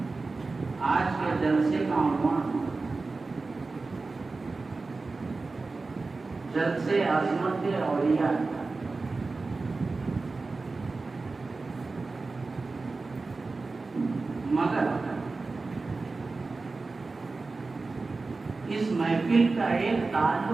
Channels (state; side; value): quieter; left; 3.8 dB